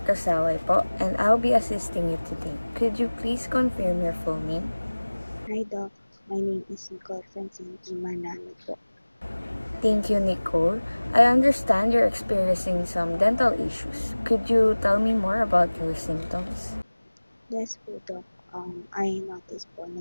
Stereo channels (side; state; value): both; inverted; correlation -1.00